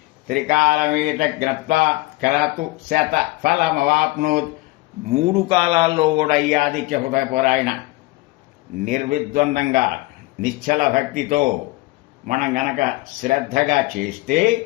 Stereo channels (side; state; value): right; quieter; 21.0 dB